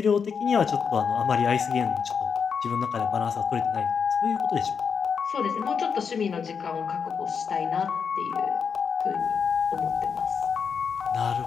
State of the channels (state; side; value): quieter; right; 6.3 dB